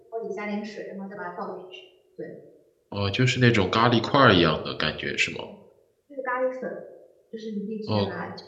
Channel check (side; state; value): both; identical; correlation 1.00